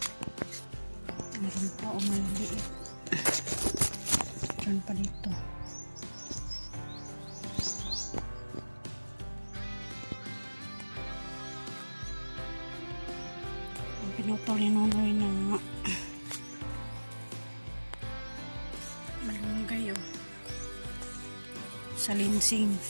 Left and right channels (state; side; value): inverted; both; correlation -1.00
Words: Meron pa o maliit. Diyan pa dito. Pinutol ni Nonoy na malunggay, oh. Salinsing.